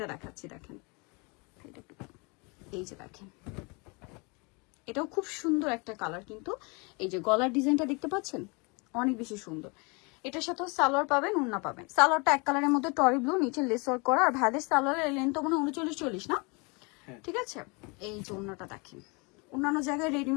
দেখাচ্ছি, দেখেন এই যে দেখেন, এটাও খুব সুন্দর একটা কালার। কিন্তু এই যে গলার ডিজাইনটা দেখতে পাচ্ছেন, অনেক বেশি সুন্দর। এটার সাথে সালোয়ার পাবেন, ওড়না পাবেন। সালোয়ারটা এক কালারের মধ্যে টরি ব্লু, নিচে লেস ওয়ার্ক করা। আর ভাইদের সালোয়ারের লেন্থ তো মনে 39-40 না, ঠিক আছে? এই যে ওড়নাটা দেখেন, অন্যান্য জায়গায়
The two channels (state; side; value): quieter; right; 30.0 dB